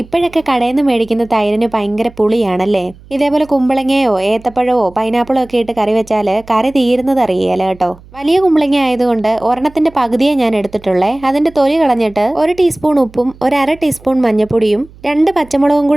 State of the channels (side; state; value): right; noise; hum, 23 dB below the sound